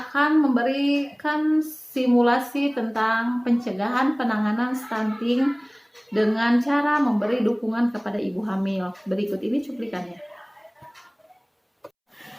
memberikan simulasi tentang pencegahan penanganan stunting dengan cara memberi dukungan kepada ibu hamil. Berikut ini cuplikannya.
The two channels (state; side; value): identical; both; correlation 1.00